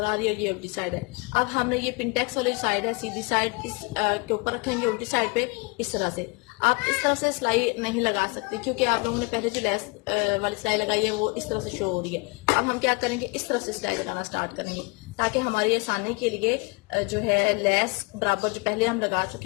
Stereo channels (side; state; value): right; quieter; 28.3 dB